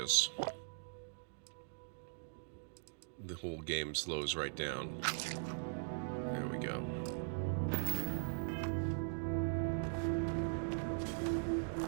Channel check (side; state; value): left; silent; digital silence